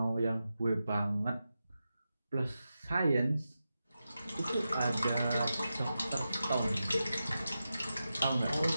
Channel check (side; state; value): both; inverted; correlation -0.91